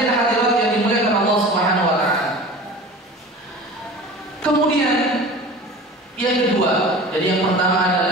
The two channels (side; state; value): both; normal; correlation 0.38